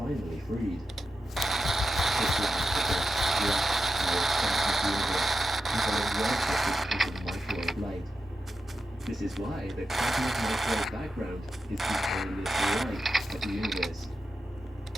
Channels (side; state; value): both; normal; correlation 0.89